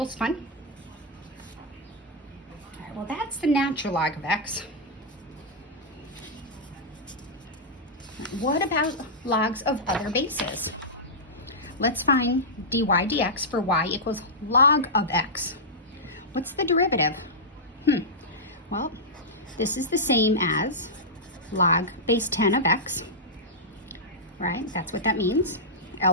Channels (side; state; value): both; normal; correlation -0.11